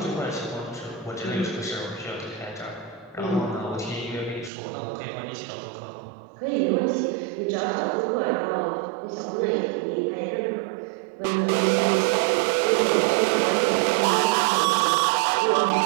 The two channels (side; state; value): left; drops out; at 4.5 s